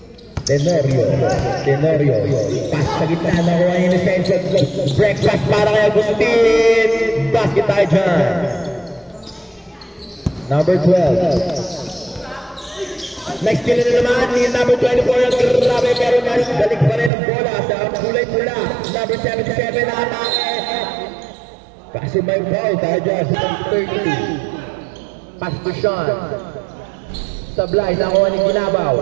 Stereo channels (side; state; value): left; drops out; at 17.1 s